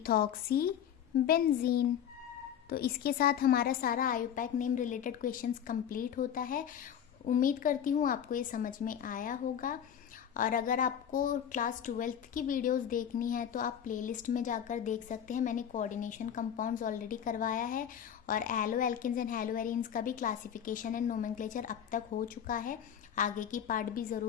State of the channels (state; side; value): quieter; right; 9.0 dB